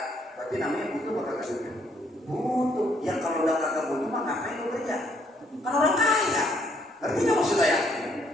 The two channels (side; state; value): both; normal; correlation 0.68